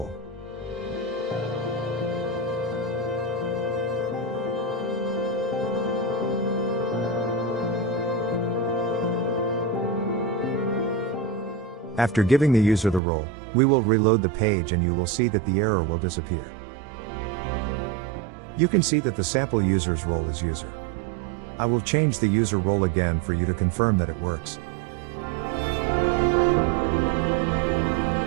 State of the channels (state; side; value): drops out; left; at 13.0 s